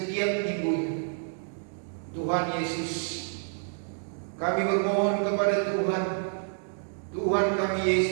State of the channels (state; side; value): silent; left; digital silence